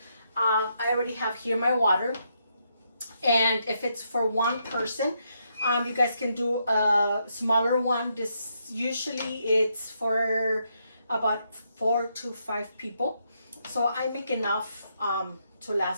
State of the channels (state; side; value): inverted; both; correlation -0.78